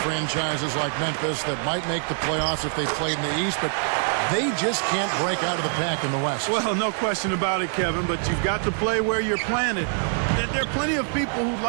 like Memphis that might make the playoffs if they played in the East, but they just can't break out of the pack in the West. Well, no question about it, Kevin, but you've got to play where you're planted. There are plenty of people who'd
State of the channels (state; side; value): silent; left; 56 dB below the other